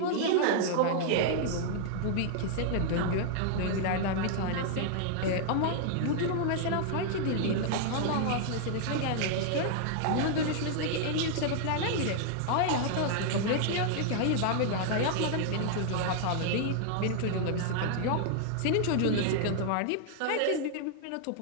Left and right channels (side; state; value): both; different; correlation -0.01